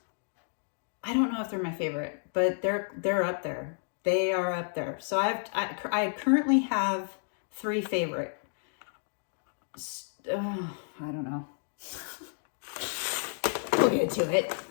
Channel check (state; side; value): silent; right; digital silence